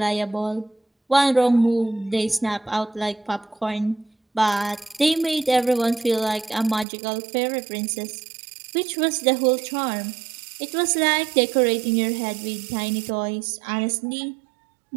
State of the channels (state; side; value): drops out; left; at 6.9 s